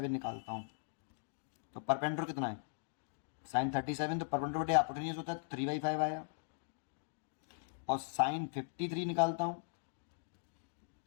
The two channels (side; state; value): right; silent; digital silence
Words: निकालता हूँ तो परपेंडिकुलर कितना है, साइन 37, तो परपेंडिकुलर बटे हाइपोटेन्यूज होता है, तो 3/5 आया। और साइन 53 निकालता हूँ